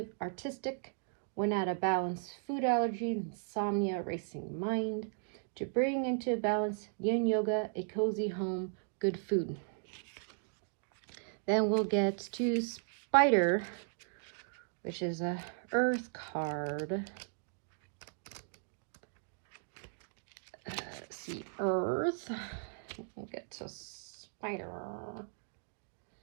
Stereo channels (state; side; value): silent; left; digital silence